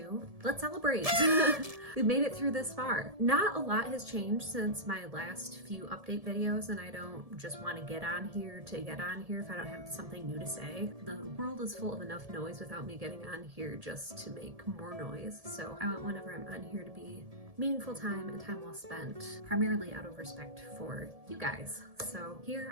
Let's celebrate. We made it through this far. Not a lot has changed since my last few update videos, and I don't just want to get on here to get on here if I don't have something new to say. The world is full of enough noise without me getting on here just to make more noise, so I want whenever I'm on here to be meaningful time and time well spent, primarily out of respect for you guys. So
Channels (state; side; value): late; left; 1.7 ms